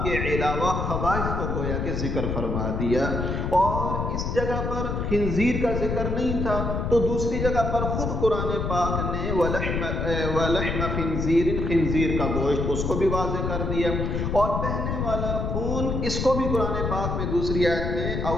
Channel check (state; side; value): noise; left; rumble, 1 dB below the sound